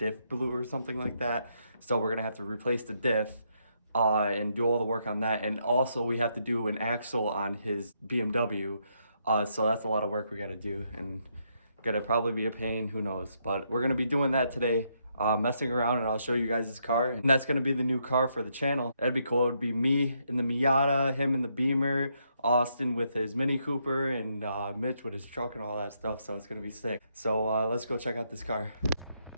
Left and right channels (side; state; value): both; inverted; correlation -0.77